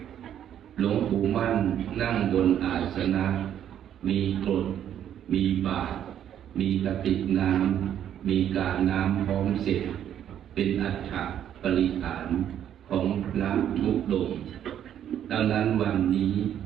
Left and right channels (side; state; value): left; quieter; 10.1 dB